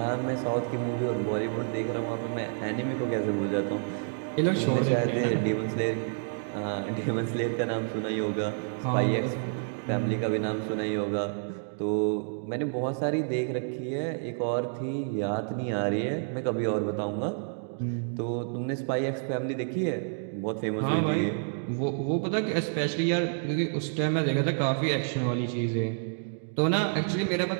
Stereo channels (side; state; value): left; silent; digital silence